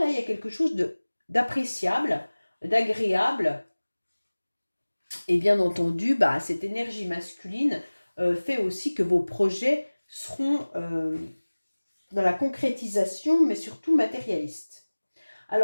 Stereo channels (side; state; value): both; inverted; correlation -1.00